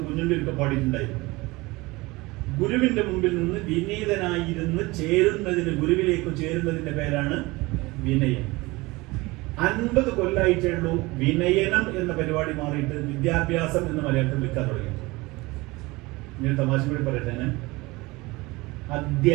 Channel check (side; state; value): left; quieter; 22.3 dB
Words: കുഞ്ഞുണ്ണിയൊക്കെ പാടിയിട്ടുണ്ടായിരുന്നു. ഗുരുവിന്റെ മുമ്പിൽ നിന്ന് വിനീതനായിരുന്ന് ചേരുന്നതിന്, ഗുരുവിലേക്ക് ചേരുന്നതിന്റെ പേരാണ് വിനയം. 50 കൊല്ലായിട്ടേ ഉള്ളൂ വിനയനം എന്ന പരിപാടി മാറിയിട്ട് വിദ്യാഭ്യാസം എന്ന് മലയാളത്തിൽ വിളിക്കാൻ തുടങ്ങി. ഞാൻ തമാശ കൂടി പറയട്ടെ. ഞാൻ